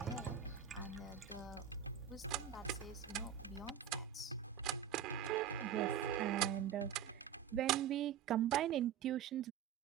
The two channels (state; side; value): quieter; left; 9.0 dB